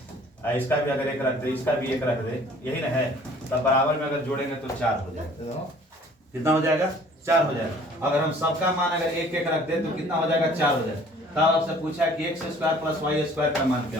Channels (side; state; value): both; normal; correlation 0.53